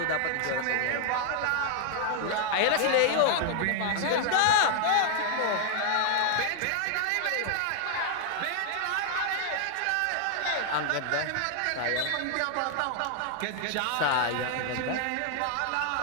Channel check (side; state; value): both; different; correlation 0.00